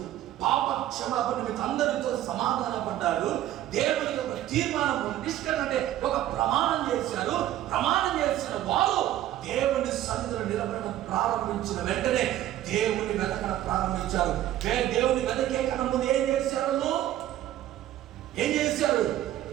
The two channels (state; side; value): quieter; left; 13.2 dB